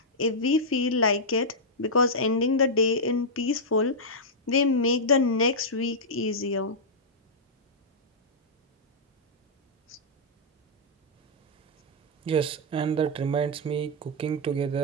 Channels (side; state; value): both; normal; correlation -0.08